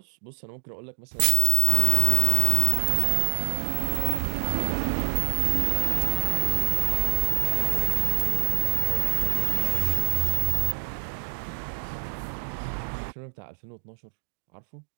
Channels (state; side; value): silent; left; digital silence